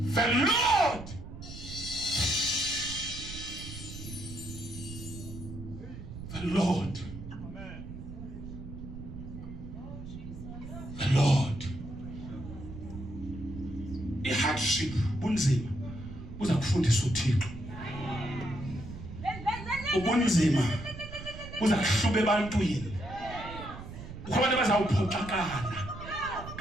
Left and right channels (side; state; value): right; noise; rumble, 11 dB below the sound